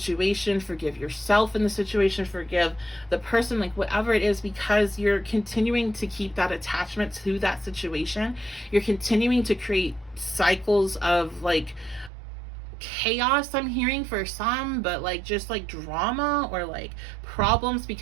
forgive yourself in the situation, forgive the person, like whatever it is, because you're continuing to keep that attachment to that situation. You're continuing to create cycles of like chaos, I'm hearing for some, but like just like drama or like problems,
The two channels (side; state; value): left; drops out; at 12.1 s